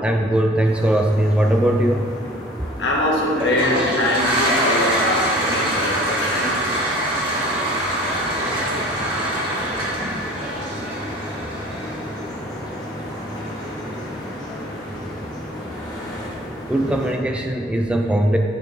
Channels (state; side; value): normal; both; correlation 0.49